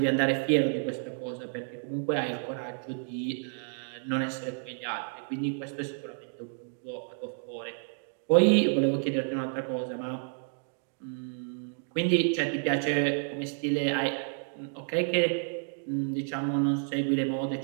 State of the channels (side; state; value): left; silent; digital silence